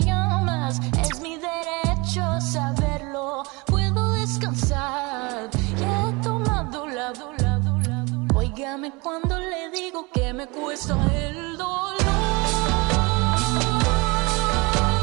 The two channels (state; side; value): quieter; left; 26.3 dB